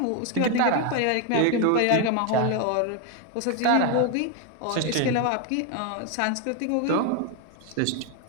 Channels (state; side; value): different; both; correlation 0.01